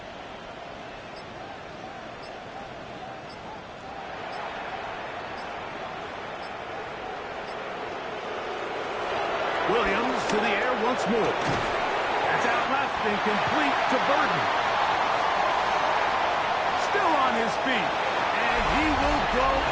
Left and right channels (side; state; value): both; identical; correlation 1.00